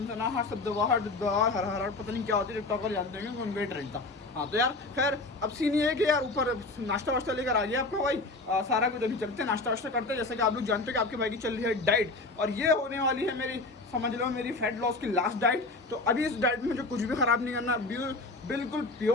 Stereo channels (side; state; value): right; quieter; 3.2 dB